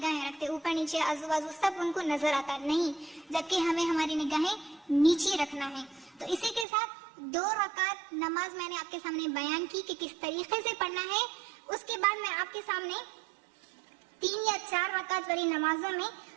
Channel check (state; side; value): drops out; left; at 6.7 s